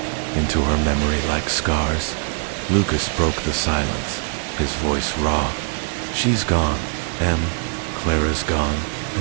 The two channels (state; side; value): silent; left; 64 dB below the other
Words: into her memory like scars. Lucas broke the silence, his voice raw. "She's gone, Em. Clara's gone,